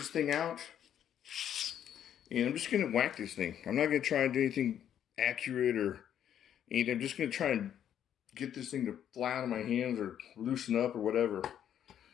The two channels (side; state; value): right; quieter; 9.9 dB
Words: thing out, and I'm just going to whack this thing. I'm not going to try and do anything accurate or anything. I'm just going to try and get this thing to fly out of my hands or loosen up or whatever.